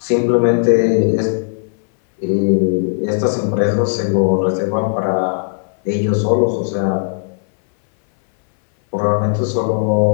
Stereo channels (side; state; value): right; silent; 61 dB below the other